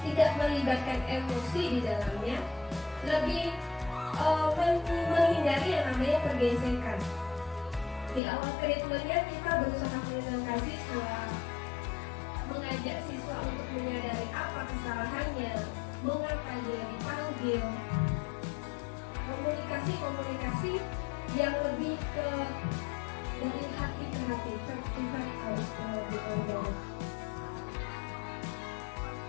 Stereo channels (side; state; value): right; drops out; at 8.2 s